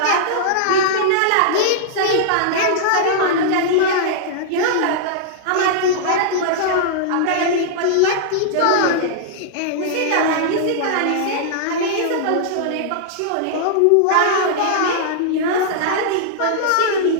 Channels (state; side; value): different; both; correlation -0.01